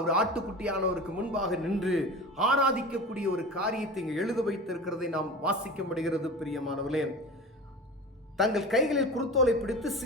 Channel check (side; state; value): both; normal; correlation 0.33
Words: ஆட்டுக்குட்டியானவருக்கு முன்பாக நின்று ஆராதிக்கக்கூடிய ஒரு காரியத்தை இங்கு எழுத வைத்திருக்கிறதை நாம் வாசிக்க முடிகிறது. பிரியமானவர்களே, தங்கள் கைகளில் குருத்தோலை பிடித்து